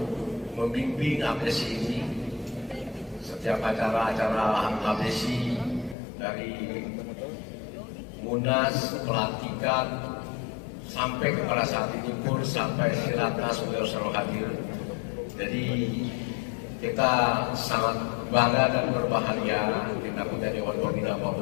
membimbing APSI ini. Setiap acara-acara APSI dari Munas, pelantikan, sampai kepada saat ini pun sampai Silatnas beliau selalu hadir. Jadi kita sangat bangga dan berbahagia kita punya Dewan Pembina Pak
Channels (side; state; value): right; drops out; at 6.0 s